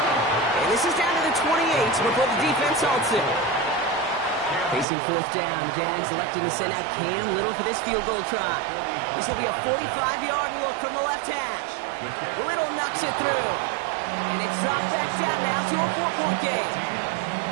And this is down to the 28 before the defense halts it. Facing fourth down, the Jags electing to send out Cam Little for this field goal try. This will be a 45-yard look from the left hash. Little knocks it through. And it's dropped back down now to a 4-point game.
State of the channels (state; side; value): drops out; left; at 4.9 s